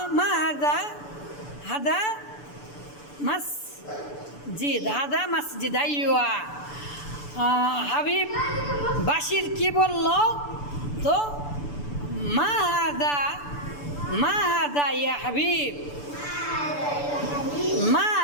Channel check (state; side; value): late; right; 6.9 ms